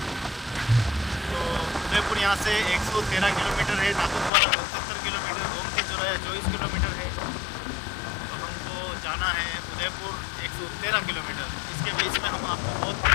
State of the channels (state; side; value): drops out; right; at 4.3 s